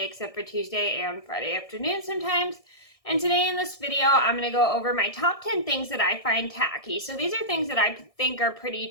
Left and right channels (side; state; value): right; late; 1.6 ms